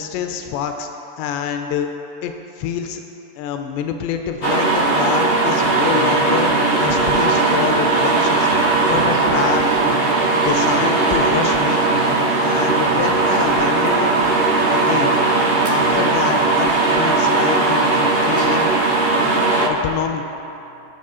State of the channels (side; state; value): right; late; 13 ms